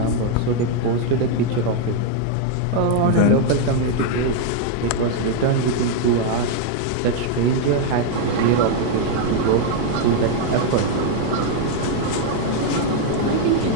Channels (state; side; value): different; both; correlation 0.00